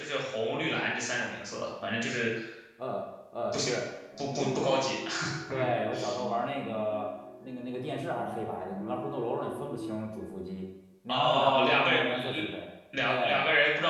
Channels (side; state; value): both; identical; correlation 1.00